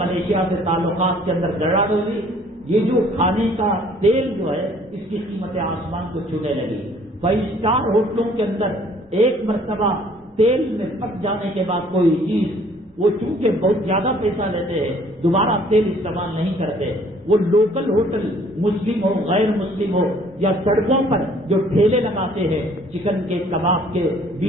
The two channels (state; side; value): normal; both; correlation 0.58